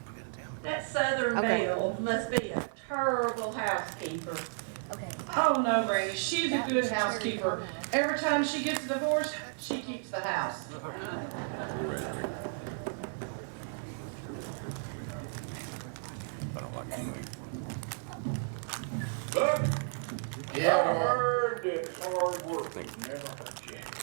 gotta tell me. that Southern Okay. Belle must be a terrible housekeeper. Okay. Oh no, Brady, she's a That good was housekeeper. cherry pie. Every time she gets a divorce, she keeps the house. Raspberry. I don't like it anyway. Yeah, I well, heard it's hard work. Thank you. never hurt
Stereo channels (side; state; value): left; silent; 56 dB below the other